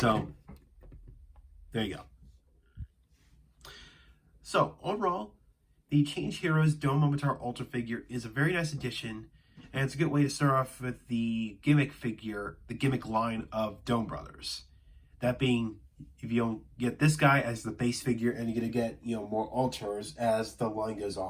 there you go. So, overall, the Change Heroes Momotaro Alter figure is a very nice addition. And it's a good way to start off with the gimmick figure, the gimmick line of Donbrothers. That being, if you don't get this guy as the base figure, and you're going to get, more alters as the line goes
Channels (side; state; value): both; identical; correlation 1.00